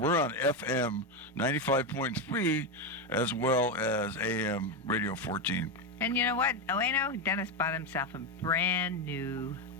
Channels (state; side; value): normal; both; correlation 0.10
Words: on FM 95.3 as well as AM Radio 14. And you know what, Wayno? Dennis bought himself a brand new